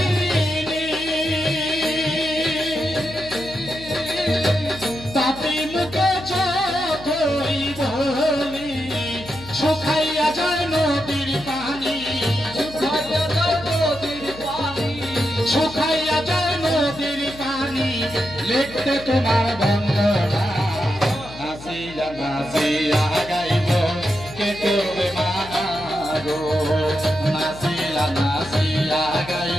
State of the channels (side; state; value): left; noise; hum, 16 dB below the sound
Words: পাপি মুখে যতই বলি শুকাইয়া যায় নদীর পানি, শুকাইয়া যায় নদীর পানি লিখতে তোমার বন্দনা। নাচিয়া নাচিয়া গাইব কে করবে মানা গো, নাচিয়া নাচিয়া